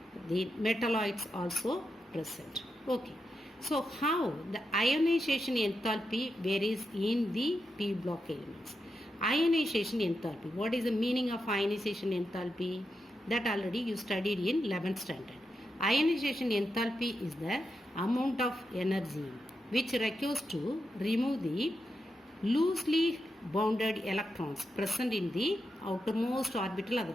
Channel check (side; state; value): both; normal; correlation 0.86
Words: the metalloids also present. Okay. So how the ionization enthalpy varies in the P block elements? Ionization enthalpy. What is the meaning of ionization enthalpy? That already you studied in 11th standard. Ionization enthalpy is the amount of energy which requires to remove the loosely bounded electrons present in the outermost orbital,